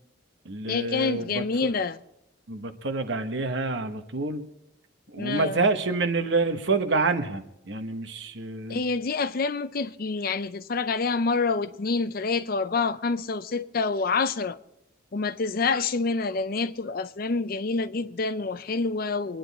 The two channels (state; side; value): normal; both; correlation 0.03